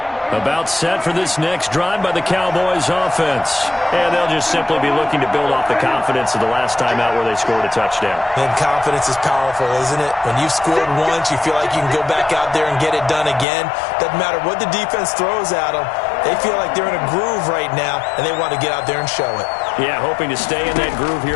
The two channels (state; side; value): drops out; right; at 13.5 s